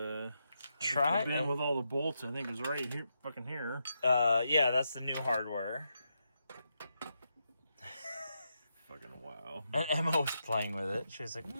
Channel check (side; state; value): both; inverted; correlation -0.84